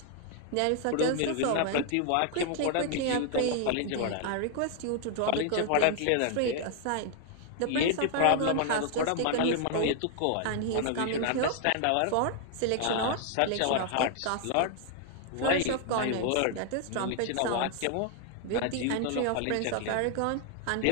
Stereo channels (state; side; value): different; both; correlation 0.00